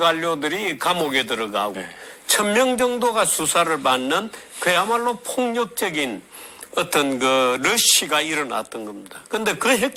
감옥에 들어가고, 1000명 정도가 수사를 받는 그야말로 폭력적인 어떤 그 러시가 일어났던 겁니다. 근데 그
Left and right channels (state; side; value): identical; both; correlation 1.00